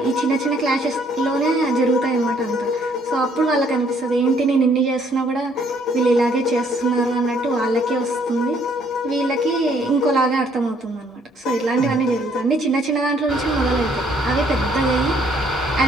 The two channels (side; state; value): both; normal; correlation 0.65